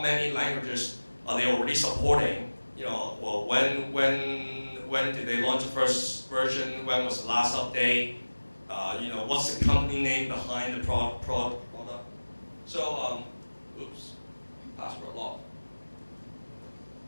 many languages are they already supporting? Well, when did they launch the first version? When was the last update? What's the company name behind the product? So, oops, password locked.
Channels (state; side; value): inverted; both; correlation -1.00